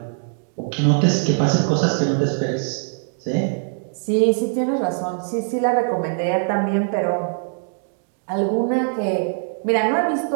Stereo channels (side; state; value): left; silent; digital silence